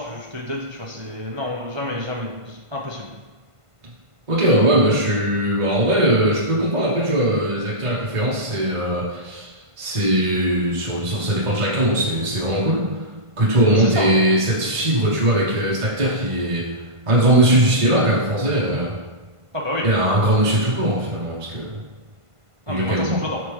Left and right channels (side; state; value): left; late; 1.5 ms